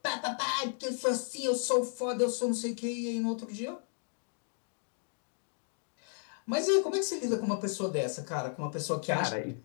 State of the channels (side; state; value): right; silent; 55 dB below the other